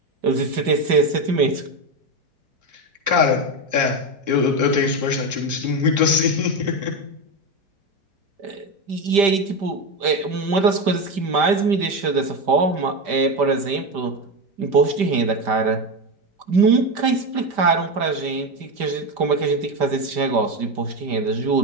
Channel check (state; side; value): late; left; 5.1 ms